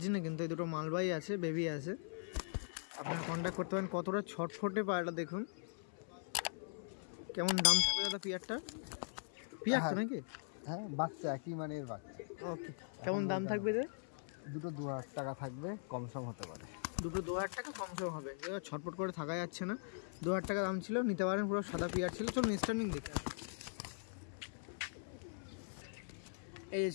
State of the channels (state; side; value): silent; right; 50 dB below the other